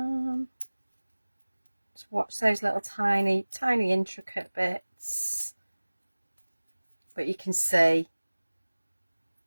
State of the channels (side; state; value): both; inverted; correlation -1.00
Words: Just watch those little tiny intricate bits, but you can see